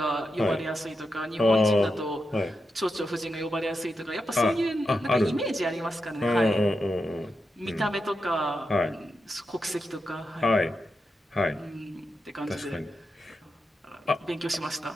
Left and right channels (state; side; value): normal; both; correlation 0.87